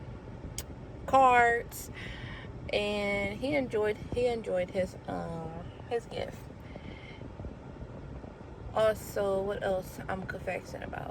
cards, and he enjoyed his gift. Also, what else I'm confessing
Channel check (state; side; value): identical; both; correlation 1.00